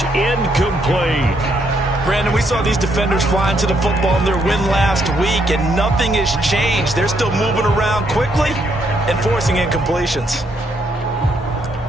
incomplete. Brandon, we saw these defenders flying to the football in their win last week, and nothing has changed. They're still moving around quickly and forcing incompletions.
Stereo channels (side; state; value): both; normal; correlation 0.74